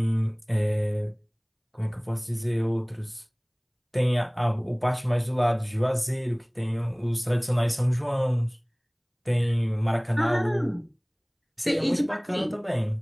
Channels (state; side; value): identical; both; correlation 1.00